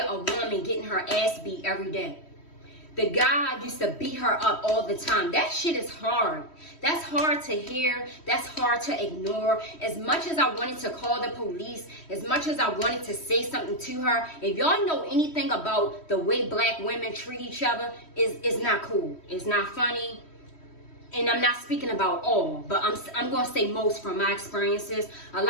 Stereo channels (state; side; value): late; right; 3.1 ms